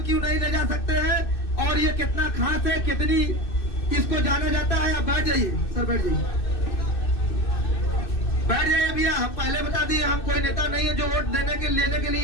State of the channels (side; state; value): right; late; 2.6 ms